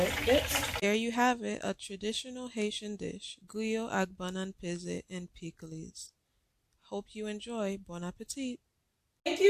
gets. There you have it, a traditional Haitian dish, griot avec banane pesée and pickles. Hope you enjoy. Bon appetit. Thank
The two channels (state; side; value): identical; both; correlation 1.00